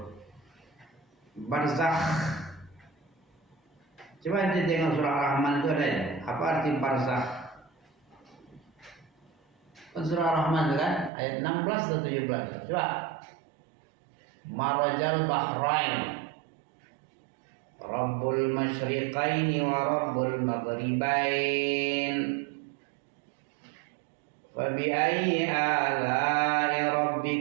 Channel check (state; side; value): drops out; left; at 11.1 s